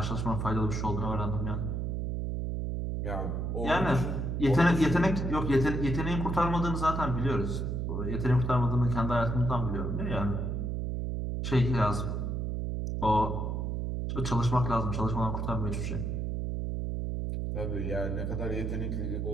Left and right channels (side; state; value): right; noise; hum, 1 dB below the sound